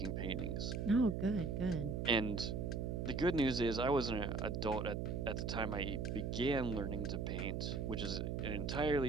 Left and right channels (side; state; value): right; noise; hum, 1 dB below the sound